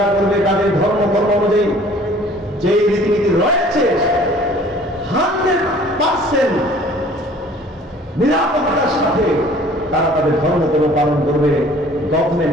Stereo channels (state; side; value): normal; both; correlation 0.52